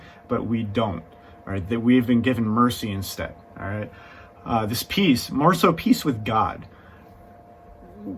but we don't. All right, that we've been given mercy instead. All right, this peace, more so peace with God.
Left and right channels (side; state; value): both; identical; correlation 1.00